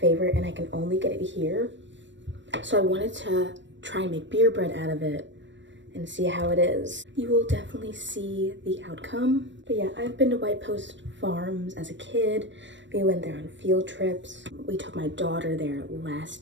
and I can only get it here. So I wanted to try and make beer bread out of it and see how it is. You will definitely see the outcome. But yeah, I've been to White Post Farms as a kid. We went there on field trips. We took my daughter there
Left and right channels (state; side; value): late; left; 0.53 ms